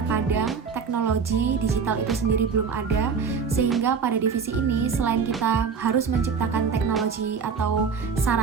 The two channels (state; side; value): quieter; left; 5.9 dB